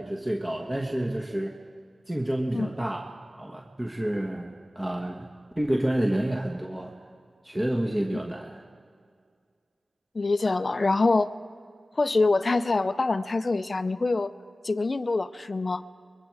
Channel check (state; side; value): normal; both; correlation 0.97